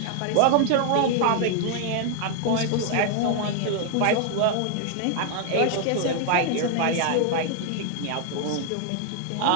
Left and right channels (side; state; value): both; different; correlation 0.00